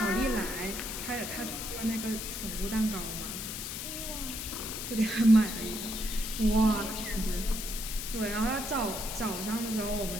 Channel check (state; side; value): noise; left; hiss, 6 dB below the sound